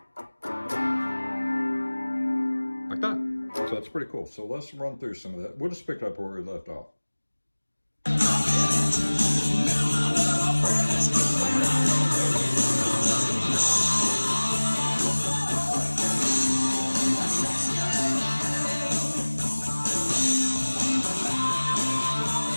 Like that. So that's pretty cool. So let's run through some of that. We'll just pick up where we left off.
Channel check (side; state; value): both; inverted; correlation -1.00